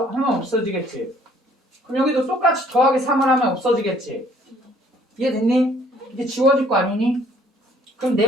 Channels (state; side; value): normal; both; correlation 0.60